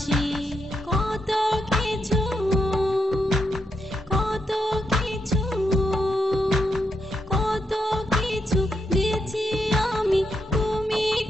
কত কিছু কত কিছু কত কিছু দিয়েছি আমি তুমি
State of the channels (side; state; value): both; normal; correlation 0.82